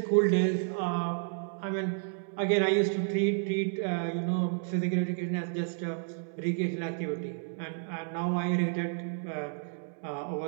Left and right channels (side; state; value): left; silent; digital silence